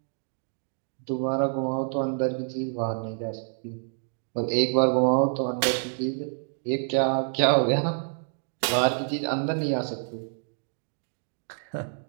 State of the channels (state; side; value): silent; left; 60 dB below the other